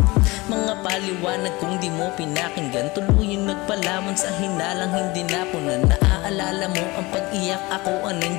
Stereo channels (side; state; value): right; quieter; 22.6 dB